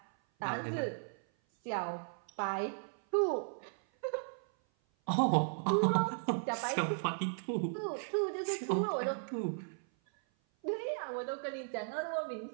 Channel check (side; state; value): left; silent; 54 dB below the other